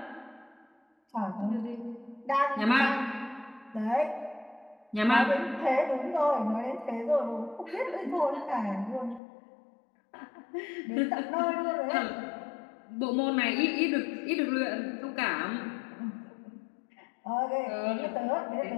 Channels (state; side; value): drops out; right; at 9.2 s